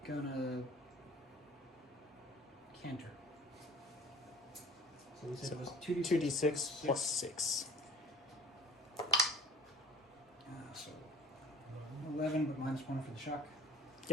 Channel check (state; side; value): normal; both; correlation 0.48